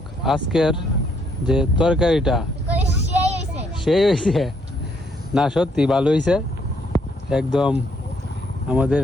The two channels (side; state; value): both; normal; correlation 0.70